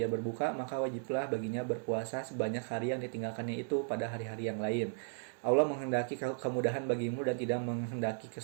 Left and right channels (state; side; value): silent; left; 54 dB below the other